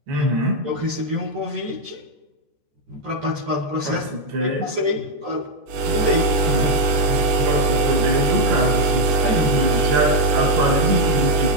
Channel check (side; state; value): left; late; 14 ms